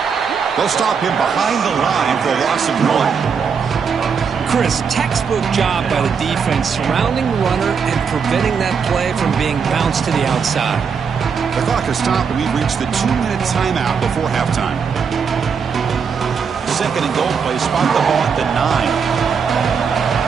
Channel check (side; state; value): left; quieter; 6.2 dB